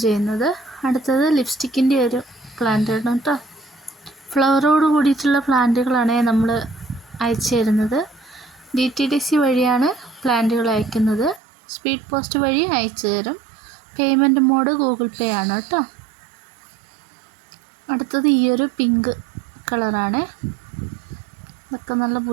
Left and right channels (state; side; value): drops out; left; at 11.4 s